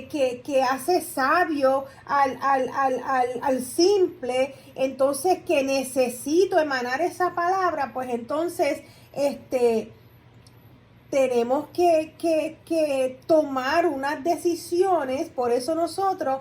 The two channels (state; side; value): identical; both; correlation 1.00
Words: hace sabio al simple, entonces que necesito emanar esa palabra, pues entonces tenemos que tomar unas decisiones. Por eso nosotros